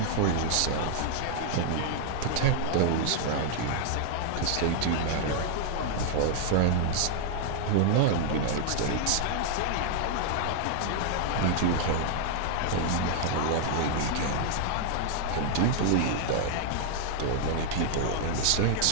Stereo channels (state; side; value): different; both; correlation 0.00